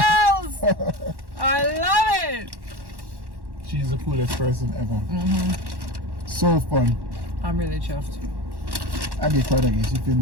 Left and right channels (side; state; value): left; late; 1.1 ms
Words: I love it! She's the coolest person ever. So fun. I'm really chuffed. I get quite a guess. If you